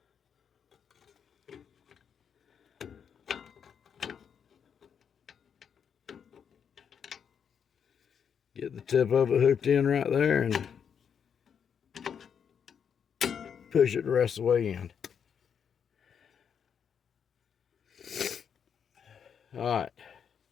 Get the tip of it hooked in right there and push it the rest of the way in. Alright,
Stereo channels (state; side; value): quieter; right; 7.5 dB